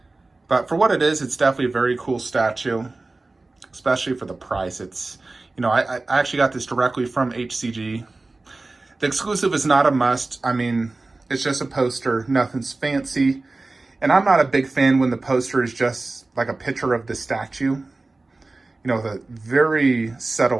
But for what it is, it's definitely a very cool statue, especially for the price. It's, you know, I actually got this directly from HCG. The exclusive is not a must. I mean, it's just a poster, nothing's fancy. And I'm not a big fan when the poster is just like a picture of the statue. You know, the very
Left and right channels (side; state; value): left; quieter; 3.3 dB